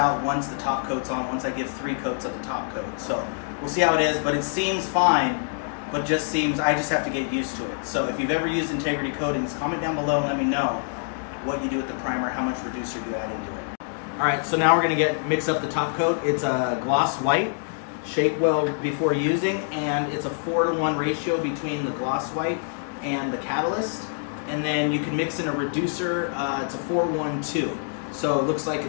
once the top coat's on, once I give 3 coats of the top coat. So we'll see how it is, but it seems fine, but just seems, I just have to get used to it. So if you've ever used integrity coatings, comment down below and let me know what you do with the primer, how much reducer you add into it. Alright, so now we're going to mix up the top coat. It's a gloss white. Shake well before using, and it's a 4-to-1 ratio between the gloss white and the catalyst. And then you can mix in a reducer. It's a 4-1-2. So it looks like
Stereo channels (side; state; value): right; silent; digital silence